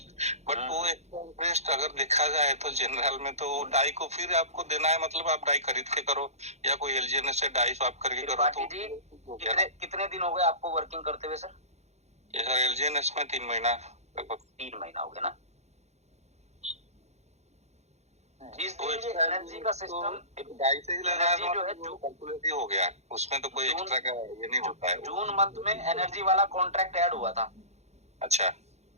बट वो एक्स्ट्रा इंटरेस्ट अगर देखा जाए तो जनरल में तो डाई को फिर आपको देना है, मतलब आप डाई खरीद के करो या कोई एलजीएनएस से डाई स्वैप करके करो। तो जी, कितने दिन हो गए आपको वर्किंग करते हुए सर? ये सर एलजीएनएस में 3 महीना लगभग। 3 महीना हो गया ना। जिस दिन ये एनर्जी का सिस्टम डाई से ही लगा है, जो है कैलकुलेट हो गया, उसमें तो कोई एक्स्ट्रा का ये नहीं होता है। जून मंथ में एनर्जी वाला कॉन्ट्रैक्ट ऐड हुआ था। अच्छा,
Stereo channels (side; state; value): left; late; 0.32 ms